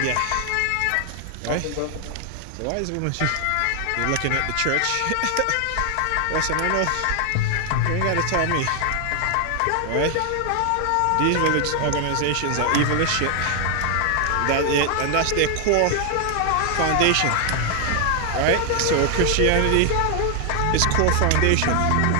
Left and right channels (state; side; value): different; both; correlation 0.00